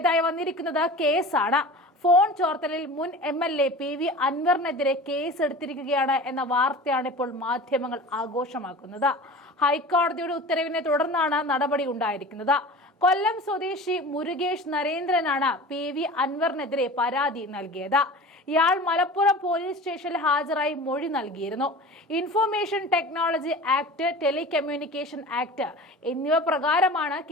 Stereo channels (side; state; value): both; normal; correlation 0.37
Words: വന്നിരിക്കുന്നത് കേസാണ്. ഫോൺ ചോർത്തലിൽ മുൻ MLA PV അൻവറിനെതിരെ കേസ് എടുത്തിരിക്കുകയാണ് എന്ന വാർത്തയാണ് ഇപ്പോൾ മാധ്യമങ്ങൾ ആഘോഷമാക്കുന്നത്. ഹൈക്കോടതിയുടെ ഉത്തരവിനെ തുടർന്നാണ് നടപടി ഉണ്ടായിരിക്കുന്നത്. കൊല്ലം സ്വദേശി മുരുകേഷ് നരേന്ദ്രനാണ് PV അൻവറിനെതിരെ പരാതി നൽകിയത്. ഇയാൾ മലപ്പുറം പോലീസ് സ്റ്റേഷനിൽ ഹാജരായി മൊഴി നൽകിയിരുന്നു. Information technology act, telecommunication act എന്നിവ പ്രകാരമാണ്